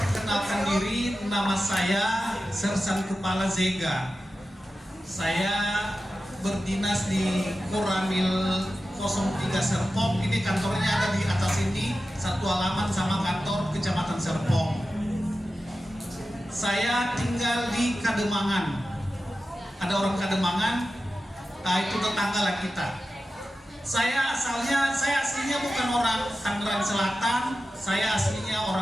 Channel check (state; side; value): normal; both; correlation 0.93